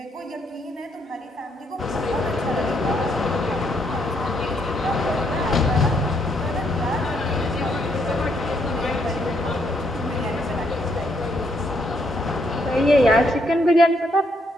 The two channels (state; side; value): normal; both; correlation 0.74